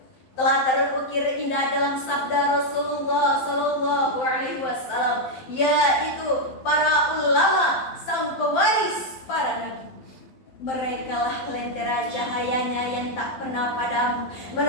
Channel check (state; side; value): late; right; 12 ms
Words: telah terukir indah dalam sabda Rasulullah sallallahu alaihi wasallam, yaitu para ulama, sang pewaris para nabi. Merekalah lentera cahayanya yang tak pernah padam,